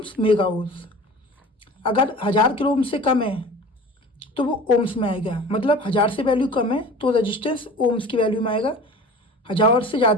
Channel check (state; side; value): normal; both; correlation 0.40